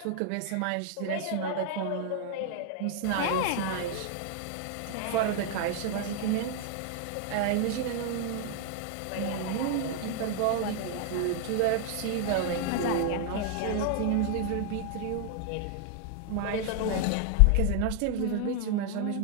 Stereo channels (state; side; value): different; both; correlation 0.00